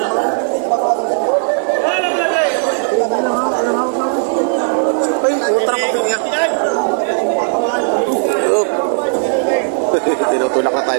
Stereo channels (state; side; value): silent; left; 69 dB below the other